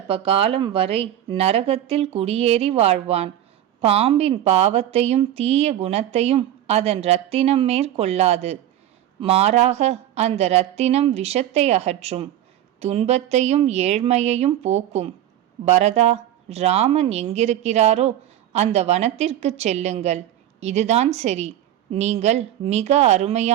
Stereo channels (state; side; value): quieter; left; 12.0 dB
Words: காலம் வரை நரகத்தில் குடியேறி வாழ்வான். பாம்பின் பாவத்தையும் தீய குணத்தையும் அதன் இரத்தினம் மேற்கொள்ளாது. மாறாக அந்த இரத்தினம் விஷத்தை அகற்றும், துன்பத்தையும் ஏழ்மையையும் போக்கும். பரதா, ராமன் எங்கிருக்கிறாரோ அந்த வனத்திற்கு செல்லுங்கள். இதுதான் சரி. நீங்கள் மிக